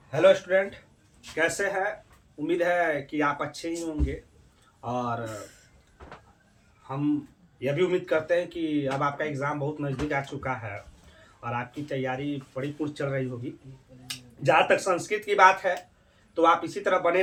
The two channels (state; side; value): identical; both; correlation 1.00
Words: Hello student, कैसे हैं? उम्मीद है कि आप अच्छे ही होंगे। और हम यह भी उम्मीद करते हैं कि अब आपका एग्ज़ाम बहुत नज़दीक आ चुका है और आपकी तैयारी बड़ी पूर्ण चल रही होगी। जहाँ तक संस्कृत की बात है तो आप इसी तरह बने